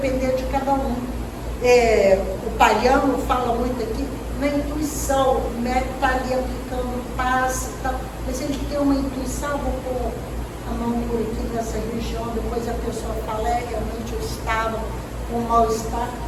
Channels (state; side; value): identical; both; correlation 1.00